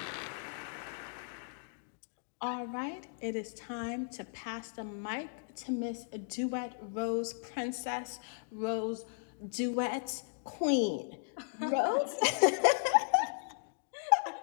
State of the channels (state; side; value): silent; right; digital silence